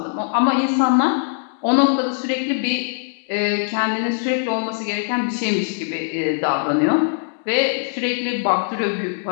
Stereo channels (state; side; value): silent; right; digital silence